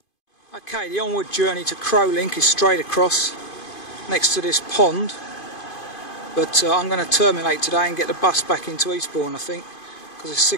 Okay, the onward journey to Crowlink is straight across next to this pond, but I'm going to terminate today and get the bus back into Eastbourne, I think, because it's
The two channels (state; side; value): late; right; 2.5 ms